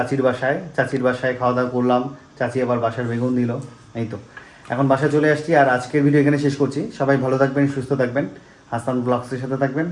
বাসায়। চাচির বাসায় খাওয়া দাওয়া করলাম, চাচি আবার বাসার বেগুন দিল। এই তো এখন বাসায় চলে আসছি। আর আজকের ভিডিও এখানে শেষ করছি। সবাই ভালো থাকবেন, সুস্থ থাকবেন, হাসান ব্লগসের সাথে থাকবেন।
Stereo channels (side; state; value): both; identical; correlation 1.00